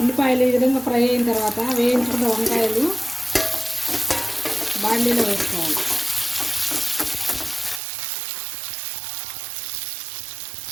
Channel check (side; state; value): left; drops out; at 7.8 s